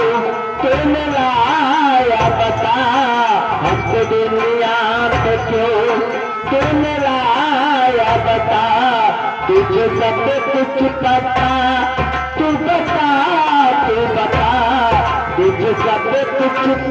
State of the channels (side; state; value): both; identical; correlation 1.00